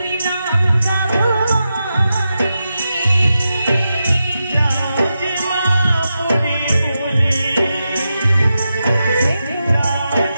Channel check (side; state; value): both; inverted; correlation -0.89